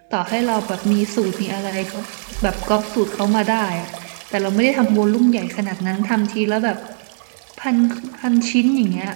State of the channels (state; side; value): silent; left; digital silence